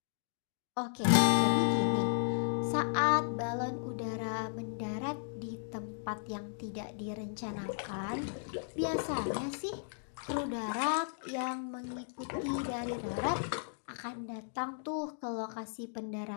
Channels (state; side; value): silent; right; digital silence